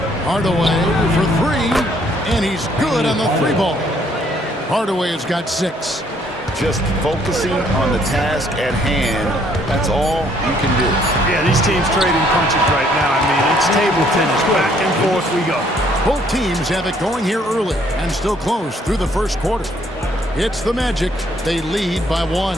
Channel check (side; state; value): both; normal; correlation 0.65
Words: Hardaway for 3, and he's good on the 3 ball. Hardaway has got 6. Just focusing on the task at hand, that's all you can do. Yeah, these teams trading punches right now. I mean, it's table tennis. Back and forth we go. Both teams have it going here early and still close through the first quarter. It's the Magic. They lead by 1.